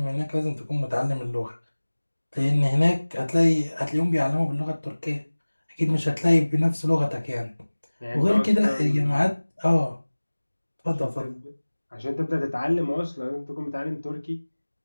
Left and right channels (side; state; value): both; inverted; correlation -1.00